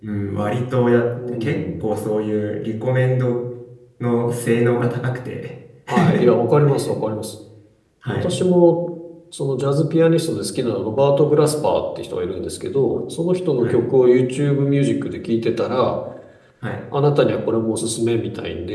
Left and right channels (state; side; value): identical; both; correlation 1.00